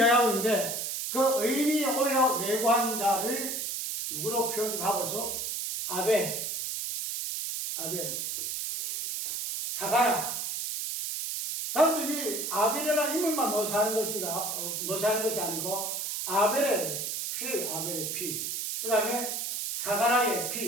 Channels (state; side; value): noise; right; hiss, 3 dB below the sound